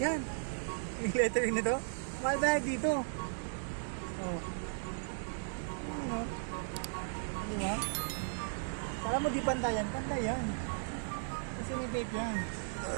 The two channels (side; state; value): left; silent; digital silence